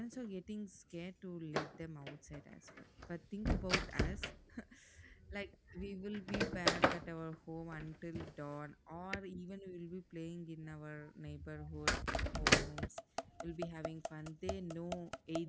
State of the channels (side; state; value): both; identical; correlation 1.00